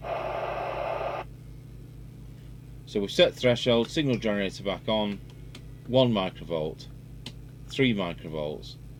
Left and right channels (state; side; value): identical; both; correlation 1.00